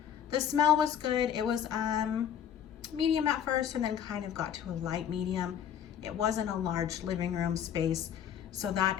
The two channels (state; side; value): quieter; right; 9.2 dB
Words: The smell was good. It was medium at first and then kind of got to a light medium. It wasn't a large living room space, so